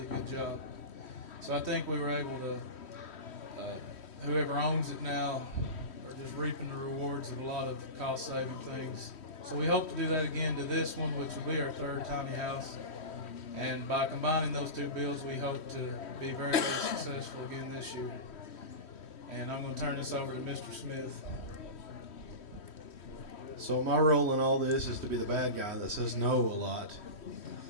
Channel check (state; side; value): late; right; 3.1 ms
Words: good job. So I think we were able to, whoever owns it now are just reaping the rewards of a lot of cost saving things. So we hope to do that again to this one, which will be our third tiny house. And by combining those two builds, we hope to be very, very successful again this year. And I'm going to turn this over to Mr. Smith. So my role in all this is to be the bad guy that says no a lot,